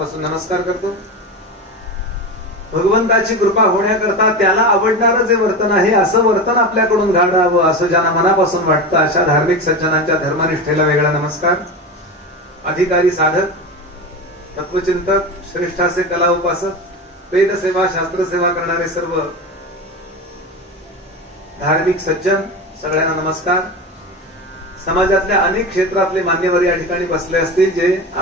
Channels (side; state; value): both; normal; correlation 0.24